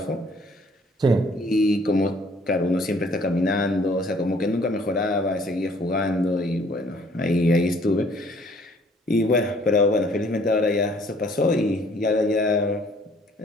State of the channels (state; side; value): normal; both; correlation 0.59